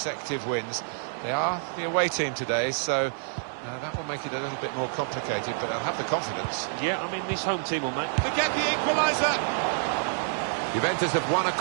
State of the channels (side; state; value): left; silent; 60 dB below the other